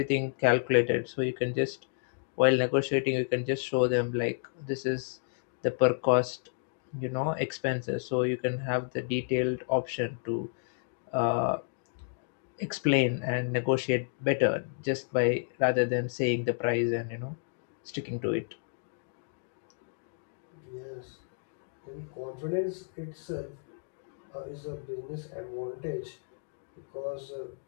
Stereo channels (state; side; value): silent; right; digital silence